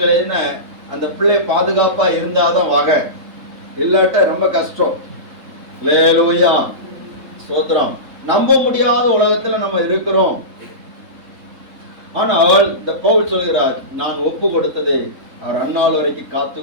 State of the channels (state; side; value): late; left; 3.6 ms